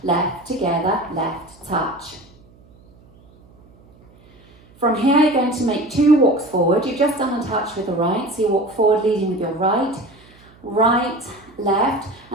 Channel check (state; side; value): noise; right; hum, 27 dB below the sound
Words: left together, left touch. From here you're going to make 2 walks forward. You've just done a touch with the right, so you walk forward leading with your right, right, left,